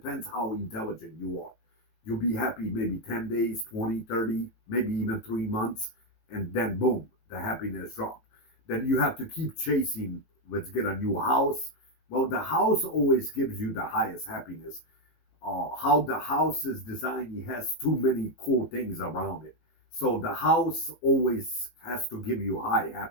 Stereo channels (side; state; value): right; late; 18 ms